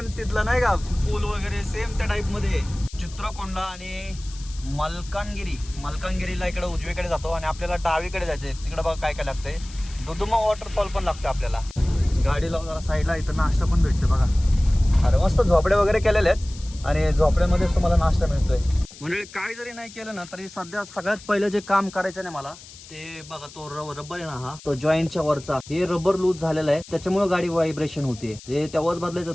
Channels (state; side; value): noise; left; hiss, 18 dB below the sound